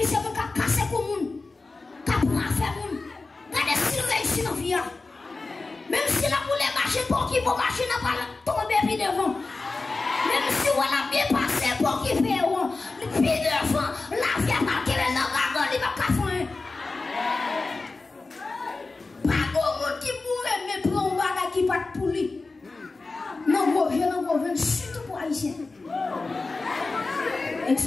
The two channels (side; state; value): right; quieter; 3.7 dB